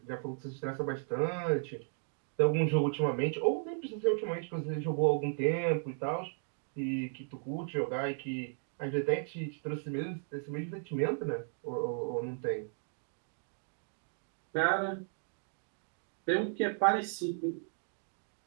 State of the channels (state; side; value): silent; left; digital silence